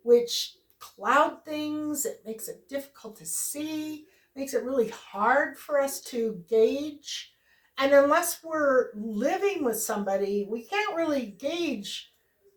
which cloud things. It makes it difficult to see, makes it really hard for us to gauge. And unless we're living with somebody, we can't really gauge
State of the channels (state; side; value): identical; both; correlation 1.00